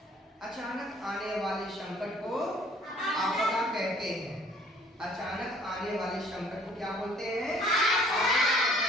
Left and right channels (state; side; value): normal; both; correlation 0.57